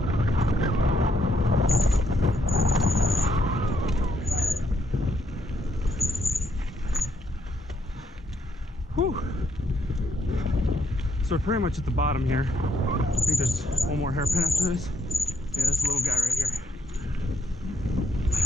Whew. So we're pretty much at the bottom here. I think there's one more hairpin after this. Yeah, this little guy right here.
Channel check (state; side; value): normal; both; correlation 0.75